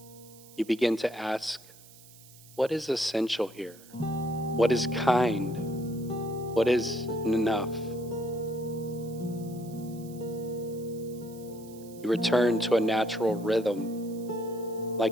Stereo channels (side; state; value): right; noise; hiss, 22 dB below the sound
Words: You begin to ask, what is essential here? What is kind? What is enough? You return to a natural rhythm,